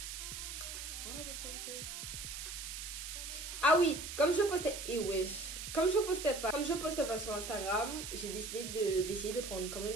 Voilà, what's gonna say? Ah oui, comme je postais... Comme je poste pas sur Instagram, j'ai décidé d'essayer de prendre quand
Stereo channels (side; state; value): right; noise; hiss, 7 dB below the sound